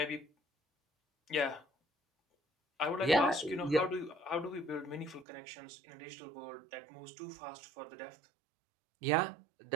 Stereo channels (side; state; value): left; drops out; at 5.2 s